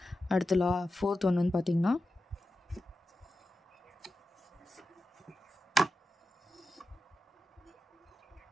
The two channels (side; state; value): both; normal; correlation 0.90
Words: அடுத்து ஃபோர்த் ஒன் வந்து பார்த்திங்கன்னா